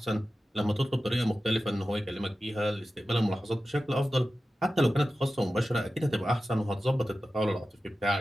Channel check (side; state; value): both; normal; correlation 0.94